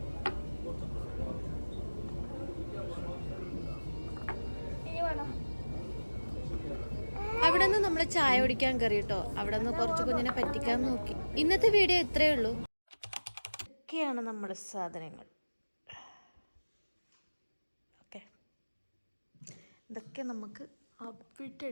ഇനി വേണം. അവിടെ നിന്ന് നമ്മൾ ചായ കുടിക്കാൻ കയറി കേട്ടോ. അവിടെ നിന്ന് കുറച്ച് കുഞ്ഞിനെ പറ്റിക്കാൻ നോക്കി. ഇന്നത്തെ വീഡിയോ ഇത്രയേ ഉള്ളൂ. ഇതൊക്കെയാണ് നമ്മുടെ സാധനങ്ങൾ. ഓക്കെ, ഇതൊക്കെ നമുക്ക് അവിടെ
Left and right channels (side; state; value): both; inverted; correlation -1.00